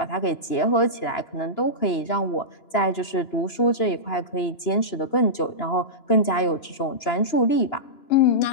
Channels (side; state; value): right; late; 2.9 ms